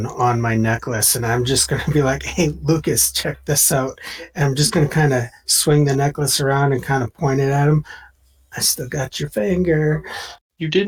on my necklace, and I'm just gonna be like, "Hey, Lucas, check this out." And I'm just gonna kind of swing the necklace around and kind of point it at him. I still got your finger. You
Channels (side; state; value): both; identical; correlation 1.00